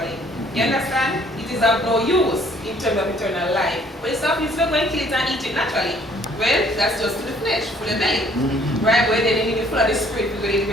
You understand? It is of no use in terms of eternal life. But it's not going to kill it and eat it naturally. Well, that's just to the flesh, for the belly. Right? But then you need to full of the spirit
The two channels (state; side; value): normal; both; correlation 0.60